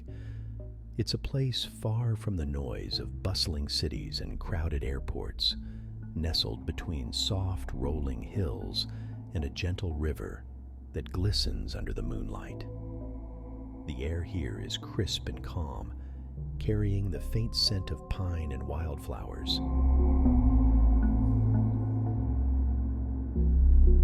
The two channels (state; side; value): identical; both; correlation 1.00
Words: It's a place far from the noise of bustling cities and crowded airports, nestled between soft, rolling hills and a gentle river that glistens under the moonlight. The air here is crisp and calm, carrying the faint scent of pine and wildflowers.